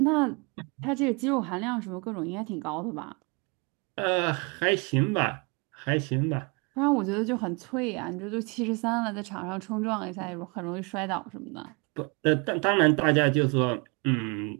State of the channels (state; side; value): quieter; left; 31.0 dB